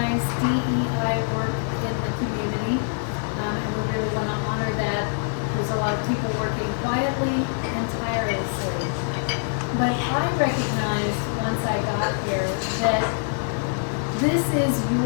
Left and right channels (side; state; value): right; silent; digital silence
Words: DEI work in the community, and we really want to honor that. There's a lot of people working quietly and tirelessly. But I recognized once I got here that this is